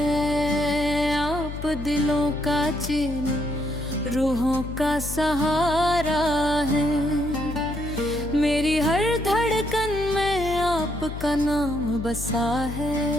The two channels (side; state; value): left; noise; hum, 8 dB below the sound